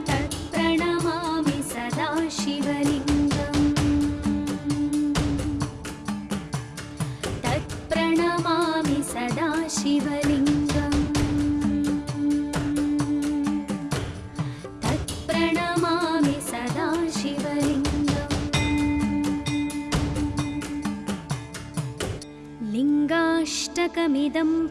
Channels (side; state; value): both; identical; correlation 1.00